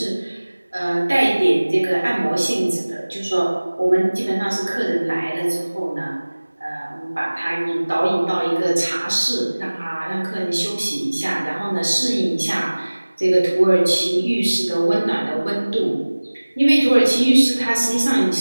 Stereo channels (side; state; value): both; inverted; correlation -1.00